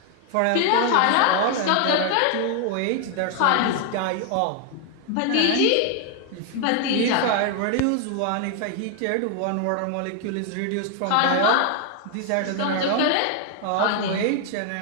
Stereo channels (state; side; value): different; both; correlation 0.00